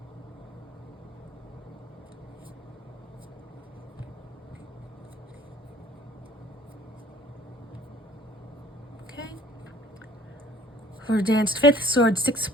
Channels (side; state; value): both; normal; correlation 0.54